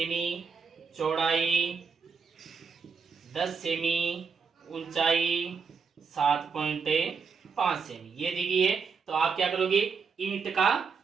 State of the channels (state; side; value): quieter; left; 5.6 dB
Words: चौड़ाई 10 सेमी, ऊंचाई 7.5 सेमी ये दी गई है। तो आप क्या करोगे, ईंट का